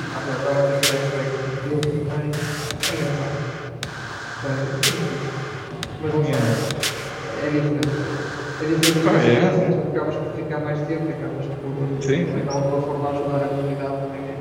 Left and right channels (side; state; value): both; identical; correlation 1.00